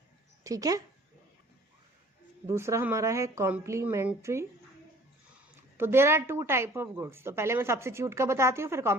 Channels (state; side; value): normal; both; correlation 0.52